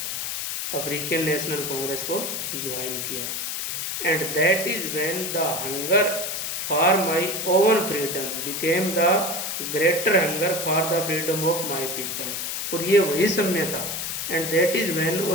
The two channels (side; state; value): left; noise; hiss, 3 dB below the sound